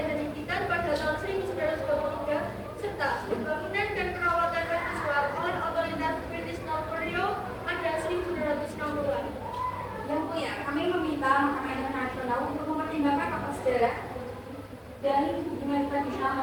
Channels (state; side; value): identical; both; correlation 1.00